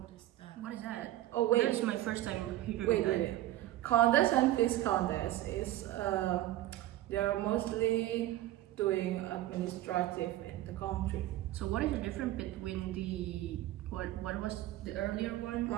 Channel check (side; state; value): left; quieter; 14.9 dB